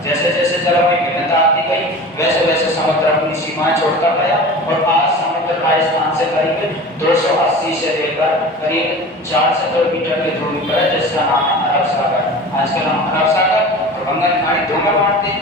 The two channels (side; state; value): both; normal; correlation 0.36